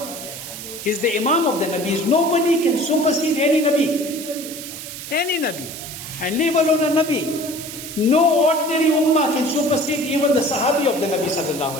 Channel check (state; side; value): noise; right; hiss, 10 dB below the sound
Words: He's the Imam of the Nabis. Nobody can supersede any Nabi. Any Nabi. And leave alone a Nabi. No ordinary ummah can supersede even the Sahabi of the Nabi Sallallahu